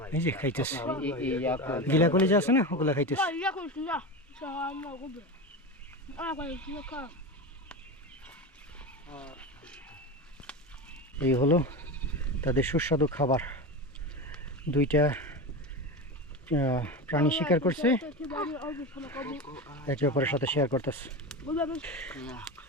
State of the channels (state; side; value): normal; both; correlation 0.23